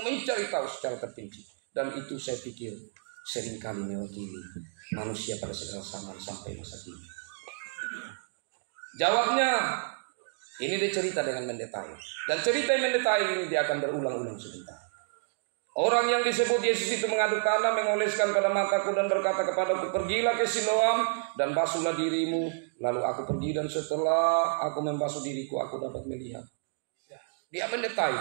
mencari tahu secara terperinci. Dan itu saya pikir seringkali mewakili manusia pada segala zaman sampai masa kini. Jawabnya, ini dia cerita dengan mendetail. Dan cerita yang mendetail ini dia akan berulang-ulang sebentar. Orang yang disebut Yesus itu mengaduk tanah, mengoleskan pada mataku dan berkata kepadaku, pergilah ke Siloam dan basuhlah dirimu. Lalu aku pergi dan setelah aku membasuh diriku, aku dapat melihat. Dia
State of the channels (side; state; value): left; silent; digital silence